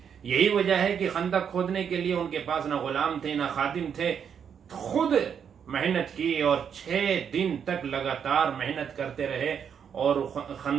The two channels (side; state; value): left; quieter; 7.7 dB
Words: یہی وجہ ہے کہ خندق کھودنے کے لیے ان کے پاس نہ غلام تھے نہ خادم تھے. خود محنت کی اور 6 دن تک لگاتار محنت کرتے رہے اور